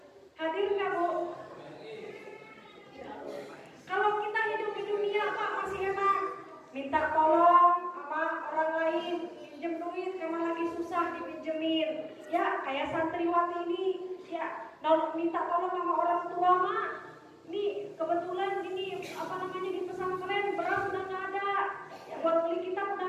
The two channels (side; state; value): both; identical; correlation 1.00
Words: Hadir nggak, Bu? Kalau kita hidup di dunia, Pak, masih enak. Minta tolong sama orang lain, pinjem duit, memang lagi susah dipinjemin. Ya, kayak santriwati ini, ya, minta tolong sama orang tua, Mak. Nih, kebetulan ini, di pesantren, beras udah nggak ada. Ya, buat beli kita udah